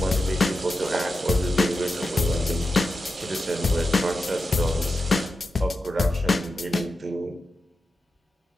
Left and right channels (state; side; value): normal; both; correlation 0.90